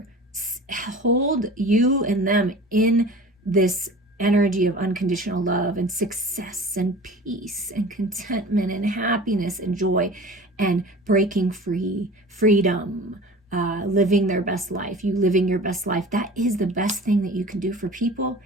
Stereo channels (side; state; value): both; normal; correlation 0.39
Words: Hold you and them in this energy of unconditional love and success and peace and contentment and happiness and joy and breaking free, freedom, living their best life, you living your best life. That is the best thing that you can do for people